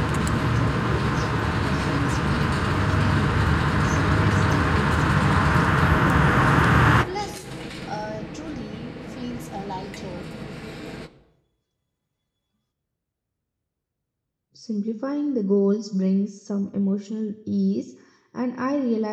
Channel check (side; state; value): both; identical; correlation 1.00